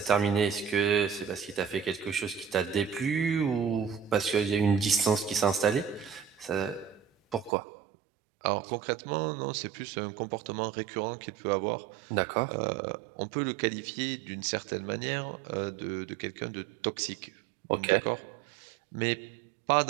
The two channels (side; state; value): left; drops out; at 7.5 s